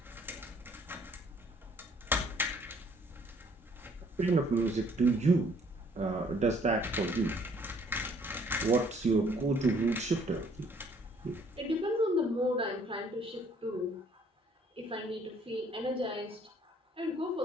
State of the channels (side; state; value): both; normal; correlation 0.61